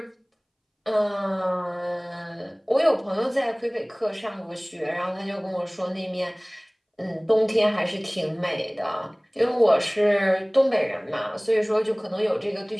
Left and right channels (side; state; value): both; identical; correlation 1.00